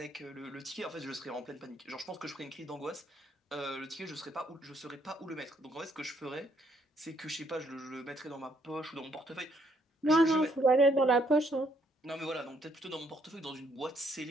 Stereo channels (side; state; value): both; normal; correlation 0.70